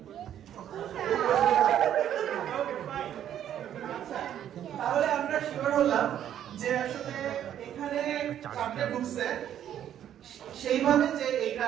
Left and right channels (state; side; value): quieter; left; 10.5 dB